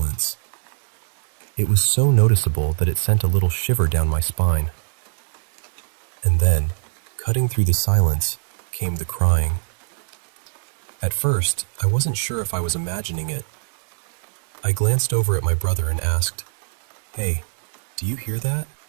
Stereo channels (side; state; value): left; silent; digital silence